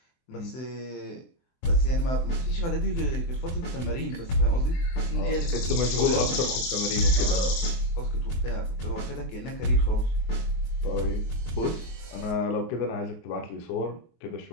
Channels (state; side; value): late; right; 24 ms